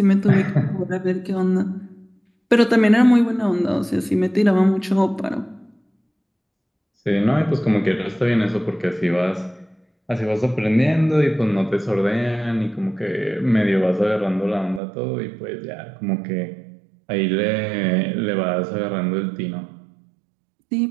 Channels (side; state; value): left; drops out; at 14.8 s